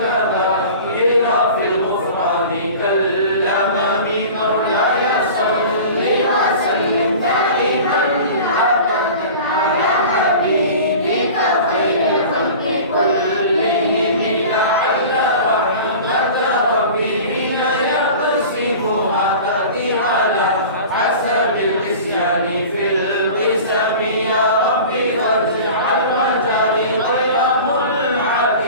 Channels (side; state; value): both; inverted; correlation -0.38